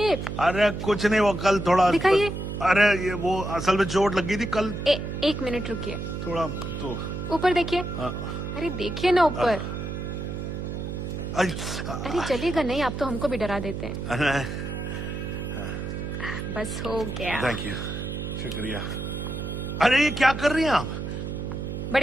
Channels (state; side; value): noise; right; hum, 5 dB below the sound